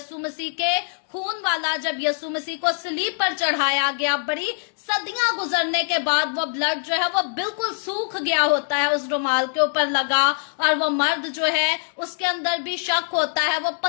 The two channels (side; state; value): right; silent; 63 dB below the other